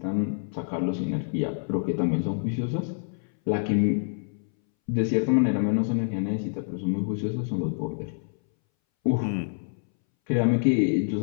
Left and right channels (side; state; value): right; silent; 60 dB below the other